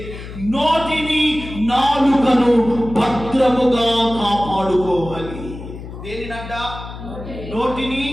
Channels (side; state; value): left; noise; hum, 12 dB below the sound